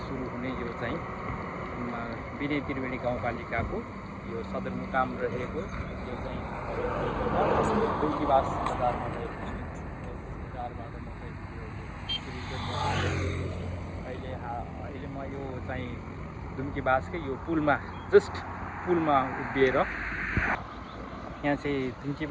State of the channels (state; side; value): identical; both; correlation 1.00